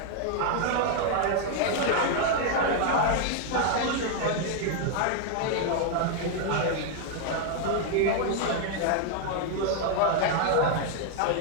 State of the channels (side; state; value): both; different; correlation 0.00